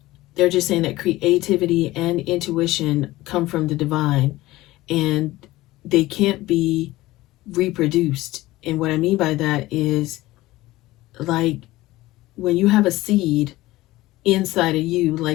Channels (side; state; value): right; quieter; 17.9 dB